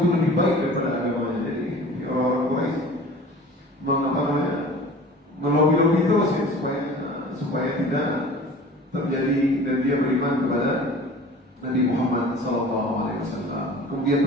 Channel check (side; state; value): both; normal; correlation 0.43